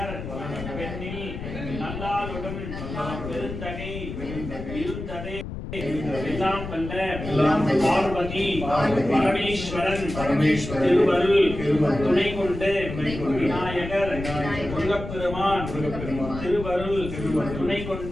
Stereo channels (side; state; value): left; noise; rumble, 8 dB below the sound